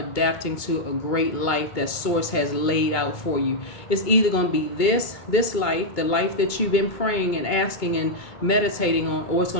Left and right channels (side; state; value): right; late; 2.2 ms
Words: to a great life that Source has laid out for you. It's either going to be this life, the life that you've been praying and asking and meditating on, or it's